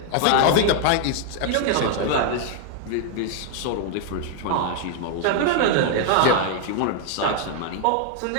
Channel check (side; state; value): both; different; correlation 0.00